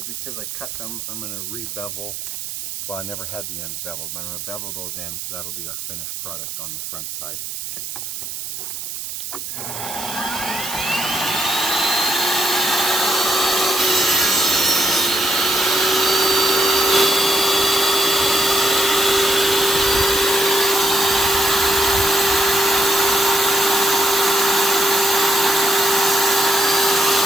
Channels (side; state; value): right; noise; hiss, 8 dB below the sound